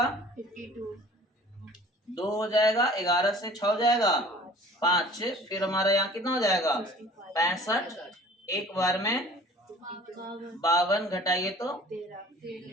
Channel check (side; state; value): both; normal; correlation 0.48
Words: 2 हो जाएगा, 11 से 6 हो जाएगा 5, फिर हमारा यहाँ कितना हो जाएगा? 65 एक बार में 52 घटाइए तो